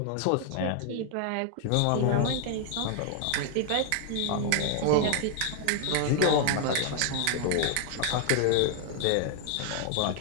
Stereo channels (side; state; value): both; different; correlation 0.00